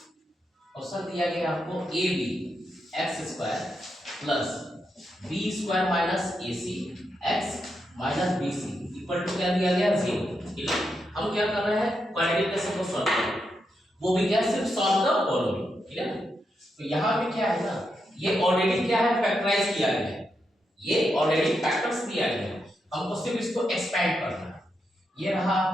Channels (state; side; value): normal; both; correlation 0.84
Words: Question दिया गया आपको a b x square plus b square minus a c x minus b c equal to क्या दिया गया 0। ठीक है, हम क्या कर रहे हैं, क्वाड्रेटिक इक्वेशन को सॉल्व कर रहे हैं, वो भी क्या सिर्फ सॉल्व द फॉलोइंग। ठीक है ना, तो यहाँ पे क्या है ना, ये ऑलरेडी क्या है फैक्टराइज किया गया है, ये ऑलरेडी फैक्टर्स दिया गया है, हमको सिर्फ इसको एक्सपेंड करना है। ये रहा